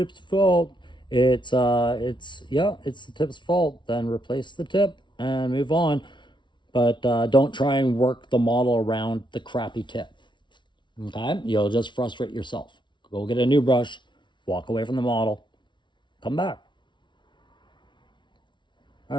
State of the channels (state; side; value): late; right; 0.23 ms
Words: fault. It's the tip's fault. Then replace the tip and move on. But don't try and work the model around the crappy tip. Okay? You'll just frustrate yourself. Go get a new brush, walk away from the model, come back.